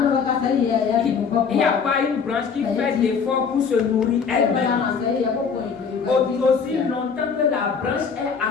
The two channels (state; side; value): quieter; right; 6.0 dB